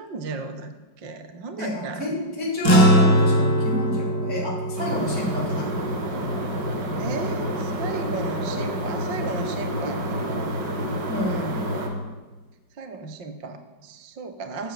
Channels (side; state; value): left; late; 4.7 ms